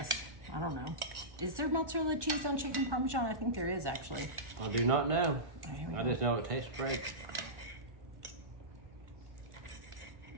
I don't know. Is there mozzarella cheese on chicken Parmesan? I think there is, actually. I do not know. Oh, I just know it tastes great.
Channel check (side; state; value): left; late; 1.4 ms